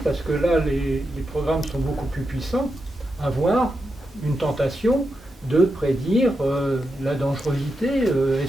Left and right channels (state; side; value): normal; both; correlation 0.86